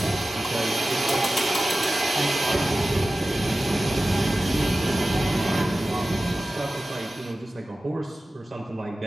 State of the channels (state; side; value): normal; both; correlation 0.95